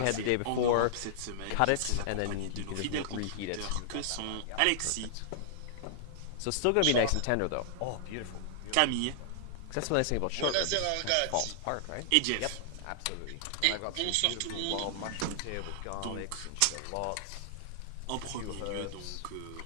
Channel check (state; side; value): different; both; correlation -0.01